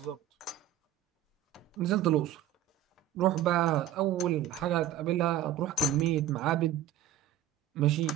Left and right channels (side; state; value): left; quieter; 10.8 dB